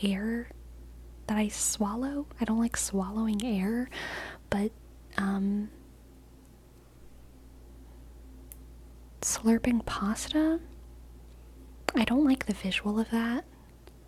air that I swallow. I don't like swallowing air, but slurping pasta, I don't like the visual of that.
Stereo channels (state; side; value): identical; both; correlation 1.00